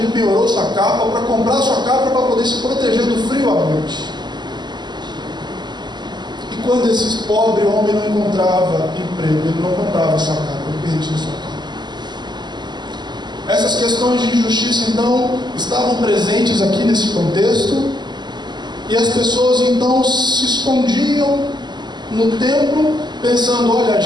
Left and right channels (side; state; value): left; late; 0.21 ms